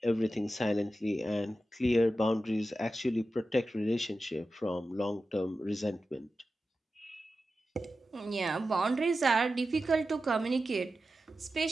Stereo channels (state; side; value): normal; both; correlation 0.92